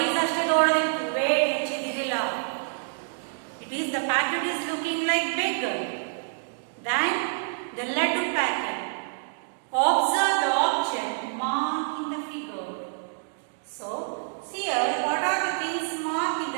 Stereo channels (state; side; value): silent; left; digital silence